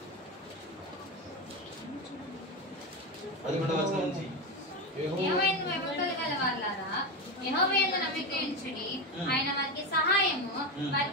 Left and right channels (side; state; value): both; normal; correlation 0.15